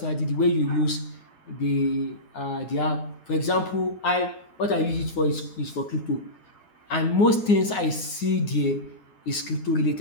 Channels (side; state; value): right; late; 9.6 ms